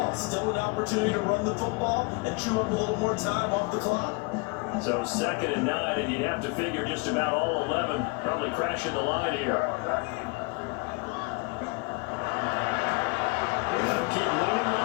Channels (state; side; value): quieter; right; 28.8 dB